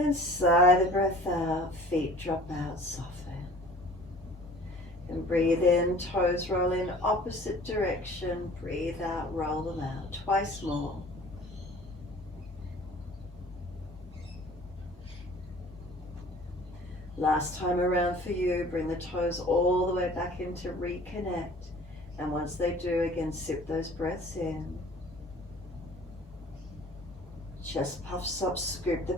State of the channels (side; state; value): both; normal; correlation 0.48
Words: sigh the breath out, feet drop out, soften. And breathe in, toes roll in opposite direction. Breathe out, roll them out. Twice more. Last time around for you, bring the toes all the way back in to reconnect. And once they do, again, sip those breaths in. Chest puffs up, scoop the